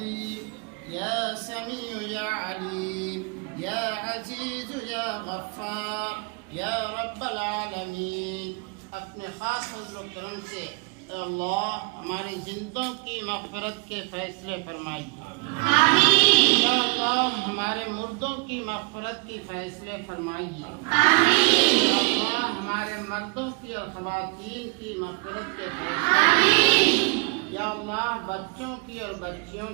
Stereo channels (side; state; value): left; quieter; 32.4 dB